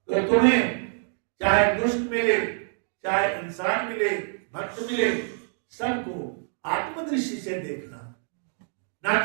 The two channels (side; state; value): left; silent; 61 dB below the other